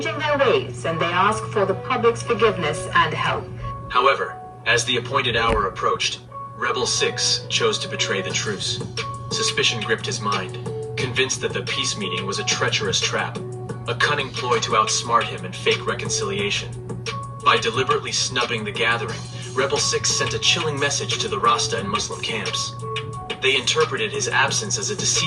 their ways, and they ask for the public's forgiveness and help. However, as the appointed hour approached, Rebel Sixx chose to betray the truce. Suspicion gripped his mind, convinced that the peace meeting was a treacherous trap, a cunning ploy to outsmart him and fake reconciliation. By deliberately snubbing the gathering, Rebel Sixx sent a chilling message to the Rasta and Muslim camps. They interpreted his absence as a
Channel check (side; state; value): both; identical; correlation 1.00